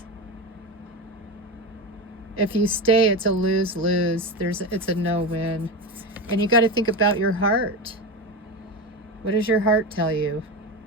If you stay, it's a lose-lose. It's a no-win. And you got to think about your heart. What does your heart tell you?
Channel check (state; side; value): normal; both; correlation 0.21